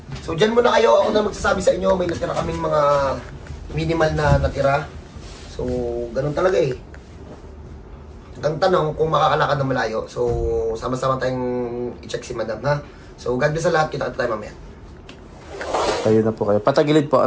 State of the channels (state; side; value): identical; both; correlation 1.00